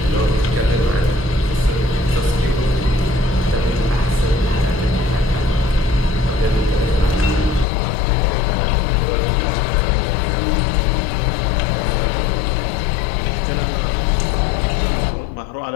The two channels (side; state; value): right; drops out; at 7.7 s